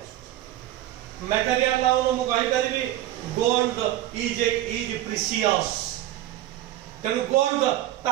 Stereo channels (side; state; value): left; quieter; 14.2 dB